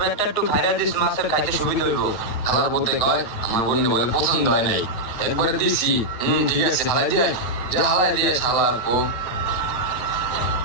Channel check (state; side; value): late; right; 9.0 ms